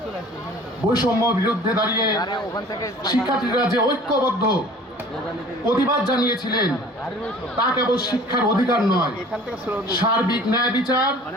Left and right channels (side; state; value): both; normal; correlation 0.47